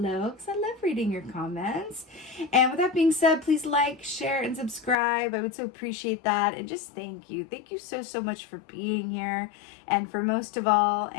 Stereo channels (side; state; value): right; drops out; at 5.0 s